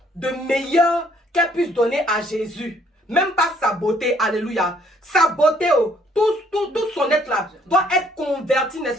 de meilleur qu'elle puisse donner à Jésus. Même pas sa beauté, alléluia. Sa beauté, tout son être là, doit être converti,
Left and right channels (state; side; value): normal; both; correlation 0.64